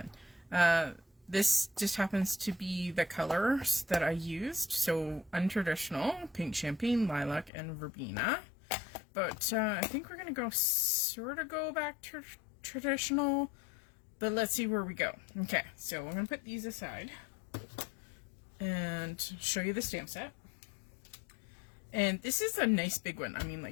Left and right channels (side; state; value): right; drops out; at 7.5 s